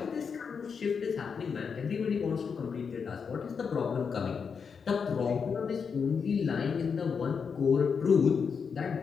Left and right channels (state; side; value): quieter; right; 6.0 dB